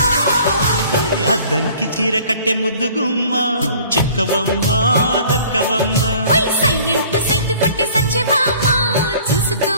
అద్దంకి చీర కట్టె ముద్దుగుమ్మ చిక్కవమ్మ దక్కవమ్మ సైంటు సైటు కొట్టే సత్యభామ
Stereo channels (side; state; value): both; inverted; correlation -0.51